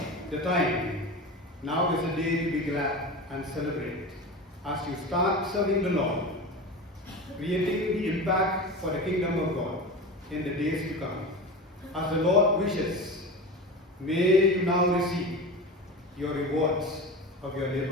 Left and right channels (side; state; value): both; normal; correlation 0.28